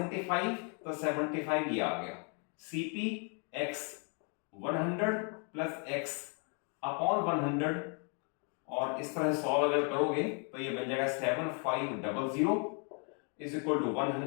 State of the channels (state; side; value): quieter; right; 39.3 dB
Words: तो 75 ये आ गया। CP x 100 plus x upon 100, और इस तरह सॉल्व अगर करोगे तो ये बन जाएगा 7500 is equal to